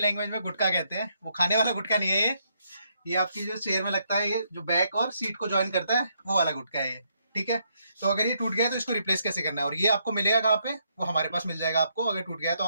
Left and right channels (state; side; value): inverted; both; correlation -0.75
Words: में गुटका कहते हैं। वो खाने वाला गुटका नहीं है ये आपकी जो चेयर में लगता है, ये जो बैक और सीट को ज्वाइन करता है वो वाला गुटका है ये। ठीक है, तो अगर ये टूट गया है तो इसको रिप्लेस कैसे करना है, और ये आपको मिलेगा कहाँ पे? वो हमारे पास मिल जाएगा आपको। अगर टूट गया है तो